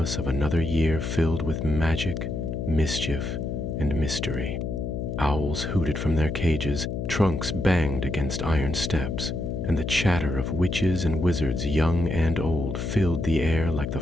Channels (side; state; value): left; noise; hum, 3 dB below the sound